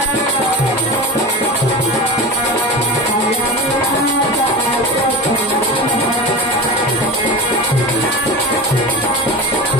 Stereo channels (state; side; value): normal; both; correlation 0.29